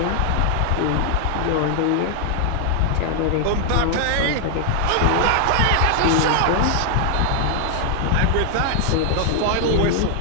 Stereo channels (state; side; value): different; both; correlation 0.00